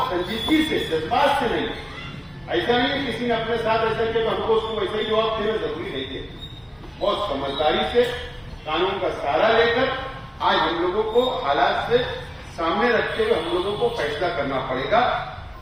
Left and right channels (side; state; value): both; identical; correlation 1.00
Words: संजीदगी से, जज्बात से नहीं, ऐसा नहीं किसी ने अपने साथ ऐसा किया तो हमको उसको वैसा ही जवाब देना जरूरी नहीं है। बहुत समझदारी से, कानून का सहारा लेकर आज हम लोगों को हालात से सामने रखते हुए हम लोगों को फैसला करना पड़ेगा,